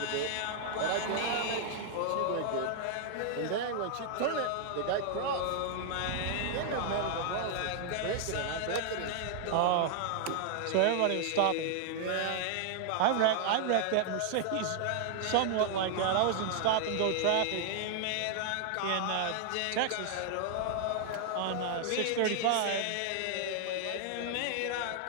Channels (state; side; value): different; both; correlation 0.00